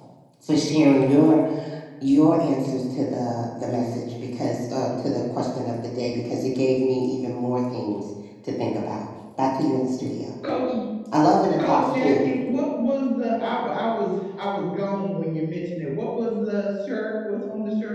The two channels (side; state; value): both; identical; correlation 1.00